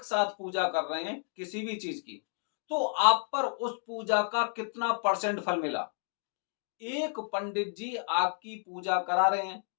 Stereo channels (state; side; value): silent; right; 57 dB below the other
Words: साथ पूजा कर रहे हैं किसी भी चीज की, तो आप पर उस पूजा का कितना परसेंट फल मिला। एक पंडित जी आपकी पूजा करा रहे हैं